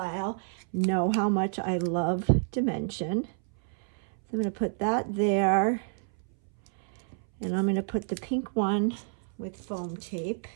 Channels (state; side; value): silent; left; 58 dB below the other